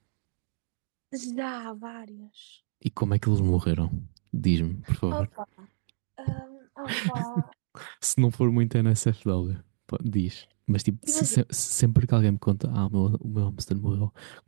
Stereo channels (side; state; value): left; silent; digital silence